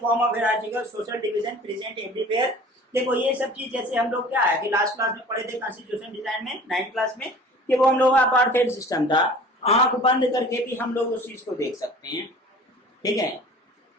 form of hierarchical social division present everywhere. देखो ये सब चीज जैसे हम लोग क्या है कि लास्ट क्लास में पढ़े थे कॉन्स्टिट्यूशन डिजाइन में 9th क्लास में, कि वो हम लोग का अपार्थाइड सिस्टम था, आंख बंद करके भी हम लोग उस चीज को देख सकते हैं। ठीक है,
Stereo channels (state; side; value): normal; both; correlation 0.44